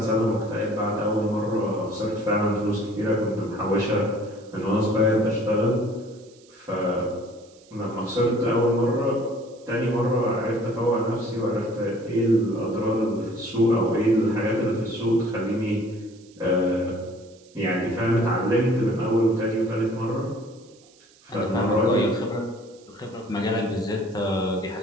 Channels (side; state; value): right; noise; hiss, 28 dB below the sound